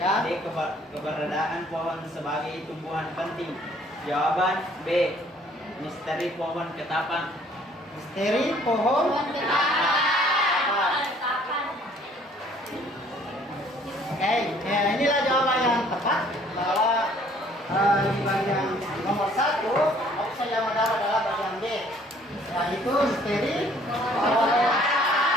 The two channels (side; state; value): both; normal; correlation 0.59